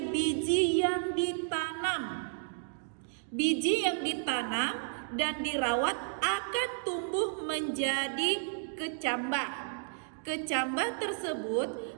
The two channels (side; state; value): left; silent; digital silence